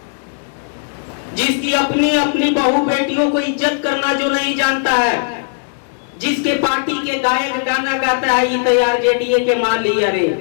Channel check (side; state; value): right; silent; digital silence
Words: जिसकी अपनी बहू बेटियों को इज्जत करना जो नहीं जानता है, जिसके पार्टी के गायक गाना गाता है, ये तैयार जेडीए के मान लिया रे।